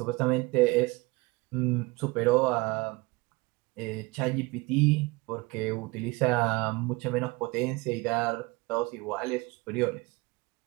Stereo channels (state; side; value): quieter; left; 24.0 dB